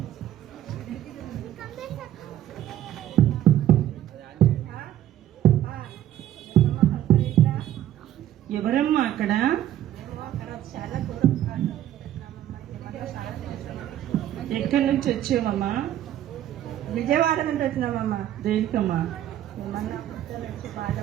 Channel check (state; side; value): quieter; left; 12.1 dB